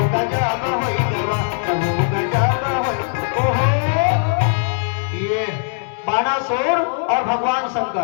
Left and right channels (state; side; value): silent; right; digital silence